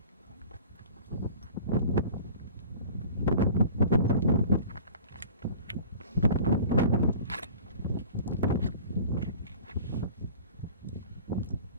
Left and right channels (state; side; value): inverted; both; correlation -0.43